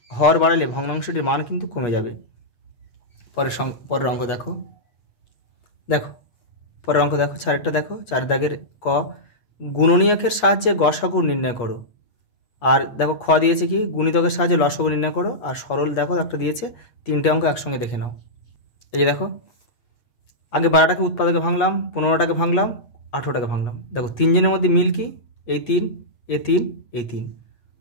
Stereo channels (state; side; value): late; right; 8.4 ms